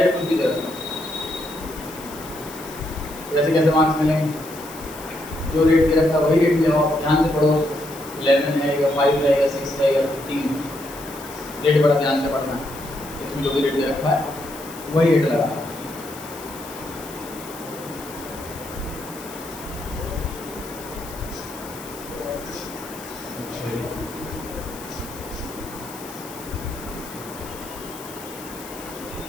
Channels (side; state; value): left; noise; hiss, 16 dB below the sound